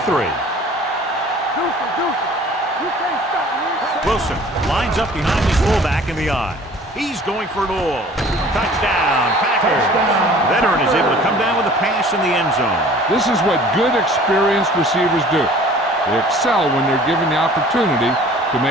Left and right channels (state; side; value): normal; both; correlation 0.49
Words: Wilson lines up behind his fullback in the I. He's going for it all. Touchdown, Packers. The veteran is able to come down with a pass in the end zone. This is what good, experienced receivers do. They excel when they're given the opportunity to